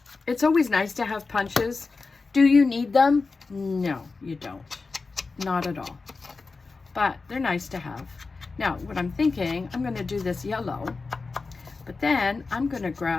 It's always nice to have punches. Do you need them? No, you don't. Not at all. But they're nice to have. Now, what I'm thinking, I'm going to do this yellow, but then I'm going to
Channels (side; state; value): right; quieter; 4.1 dB